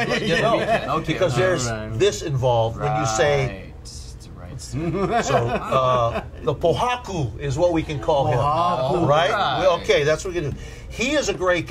Okay. Because there's this involved when you say. Right. So the Pohaku is what we can call him, right? Okay, that's what we can do. He is a great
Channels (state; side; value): identical; both; correlation 1.00